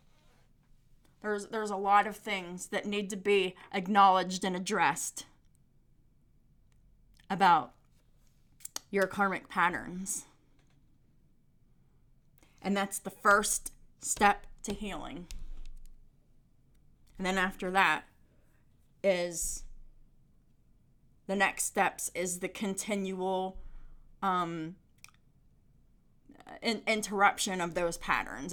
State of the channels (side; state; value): both; identical; correlation 1.00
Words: There's a lot of things that need to be acknowledged and addressed about your karmic patterns. And that's the first step to healing. And then after that is the next steps is the continual interruption of those patterns